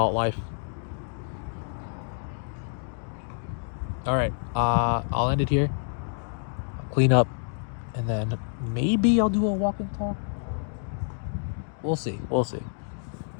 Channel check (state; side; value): silent; right; 59 dB below the other